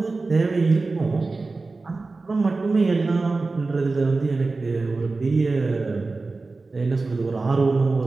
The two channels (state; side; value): quieter; left; 3.7 dB